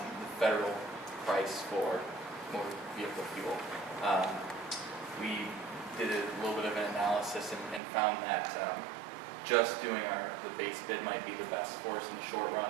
the federal price for motor vehicle fuel. We did a little bit of an analysis and found that just doing the base bid might be the best for us in the short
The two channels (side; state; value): left; drops out; at 7.8 s